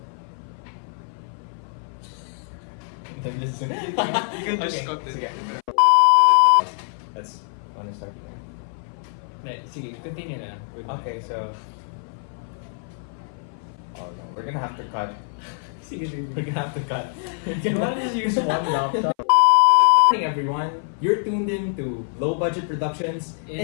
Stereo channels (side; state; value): right; silent; 57 dB below the other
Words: Listen. You can just cut it. Sige. Let's want to start here. Sige, continue na. Okay, so oh no, we're gonna have to cut. Sige. We're gonna have to cut. You want to just use one laptop? Good morning, everyone. You're tuned in to Low Budget Productions